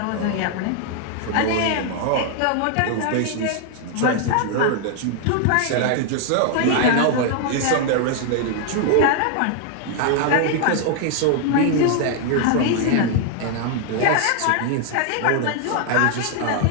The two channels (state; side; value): different; both; correlation 0.00